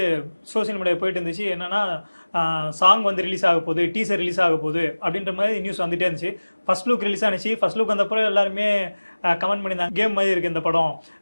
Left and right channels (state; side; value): inverted; both; correlation -1.00